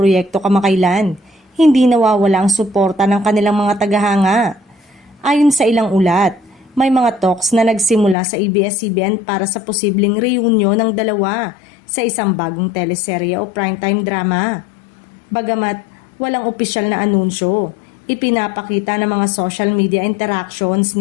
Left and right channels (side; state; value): right; drops out; at 8.2 s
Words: kamakailan, hindi nawawala ang suporta ng kanilang mga tagahanga. Ayon sa ilang ulat, may mga talks na nagsimula sa ABS-CBN para sa posibleng reunion ng dalawa sa isang bagong teleserye o primetime drama. Bagamat walang opisyal na anunsyo, ipinapakita ng mga social media interactions